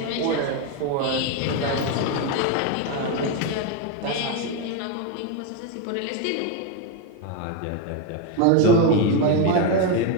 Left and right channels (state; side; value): different; both; correlation 0.02